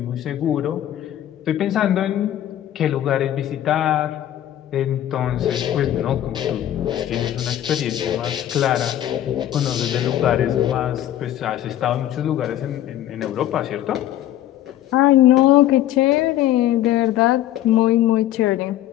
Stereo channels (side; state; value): right; quieter; 12.4 dB